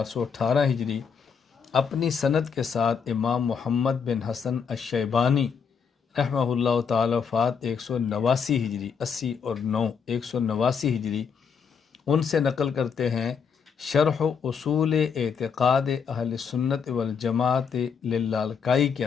ہجری، اپنی سند کے ساتھ امام محمد بن حسن الشیبانی رحمہ اللہ تعالی وفات 189 ہجری، 80 اور 9 189 ہجری، ان سے نقل کرتے ہیں شرح اصول اعتقاد اہل سنت والجماعت للالکائی کے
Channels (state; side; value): quieter; right; 6.4 dB